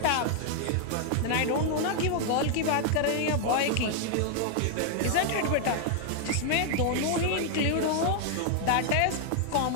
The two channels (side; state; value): both; different; correlation 0.00